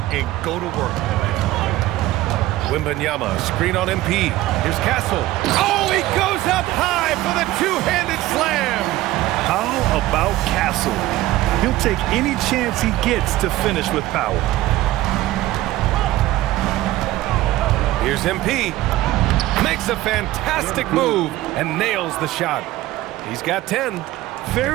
and go to work. Wembanyama, screen on MP. Here's Castle. Oh, he goes up high for the two-handed slam. How about Castle? He'll take any chance he gets to finish with power. Here's MP. Makes a fantastic move and nails the shot. He's got 10.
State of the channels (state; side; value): quieter; left; 16.2 dB